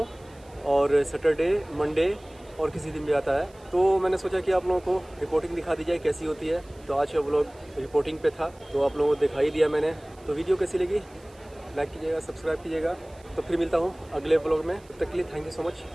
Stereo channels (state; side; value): noise; right; hiss, 28 dB below the sound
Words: और सैटरडे, मंडे और किसी दिन भी आता है। तो मैंने सोचा कि आप लोगों को रिपोर्टिंग दिखा दी जाए कैसी होती है। तो आज का व्लॉग रिपोर्टिंग पे था, तो आप लोगों को दिखाई दिया मैंने। तो वीडियो कैसी लगी लाइक कीजिएगा, सब्सक्राइब कीजिएगा। तो फिर मिलता हूँ अगले व्लॉग में, तब तक के लिए thank you so much